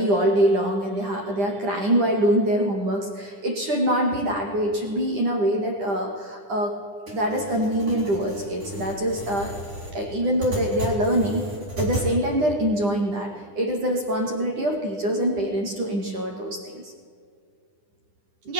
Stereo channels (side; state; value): left; late; 9.9 ms